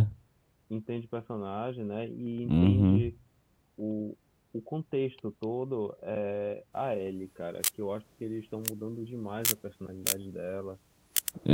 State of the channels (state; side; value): identical; both; correlation 1.00